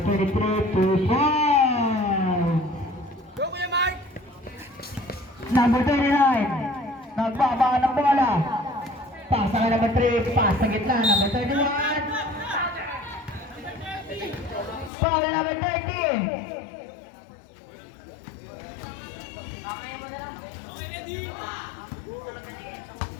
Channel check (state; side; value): drops out; right; at 14.9 s